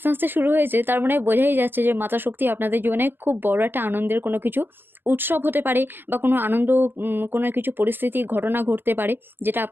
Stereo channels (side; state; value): left; late; 0.10 ms